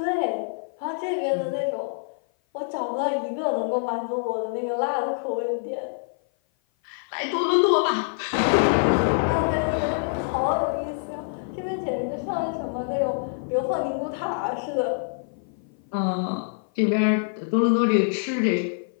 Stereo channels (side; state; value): right; silent; 55 dB below the other